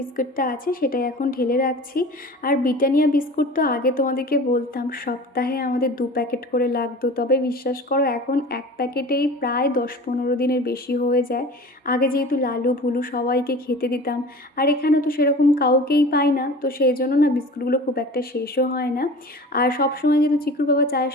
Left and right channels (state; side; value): normal; both; correlation 0.39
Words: আছে সেটাই এখন ঢেলে রাখছি। আর ব্রিটানিয়া বিস্কুট তো আগে তোমাদেরকে বলতাম সপ্তাহে আমাদের 2 প্যাকেট করে লাগতো, তবে বিশ্বাস করো এখন এক প্যাকেটেই প্রায় 10-15 দিনের বেশি হয়ে যায়। আগে যেহেতু লালু ভুলু সবাইকে খেতে দিতাম, আর এখানে তো সেরকম কাউকেই পাই না, তো সেই জন্য না বিস্কুটগুলো খুব একটা শেষও হয় না। আর সবসময় যেহেতু চিকুর বাবা চায়ের